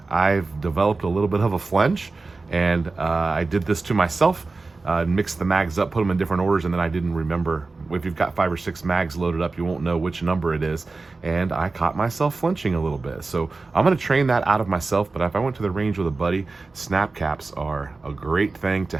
I've developed a little bit of a flinch, and I did this to myself. Mix the mags up, put them in different orders, and then I didn't remember. If you've got 5 or 6 mags loaded up, you won't know which number it is, and I caught myself flinching a little bit. So I'm gonna train that out of myself, but if I went to the range with a buddy, snap caps are a great thing to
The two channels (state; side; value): quieter; left; 3.7 dB